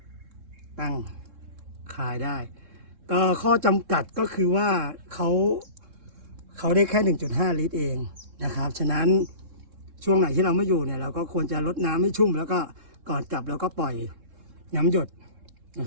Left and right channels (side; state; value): left; late; 3.7 ms